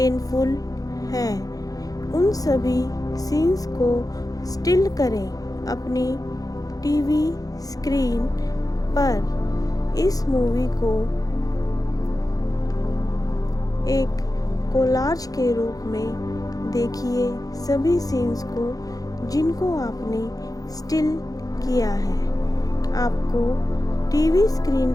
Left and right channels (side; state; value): right; late; 0.17 ms